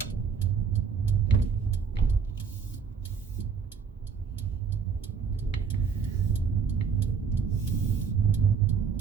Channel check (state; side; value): quieter; left; 6.1 dB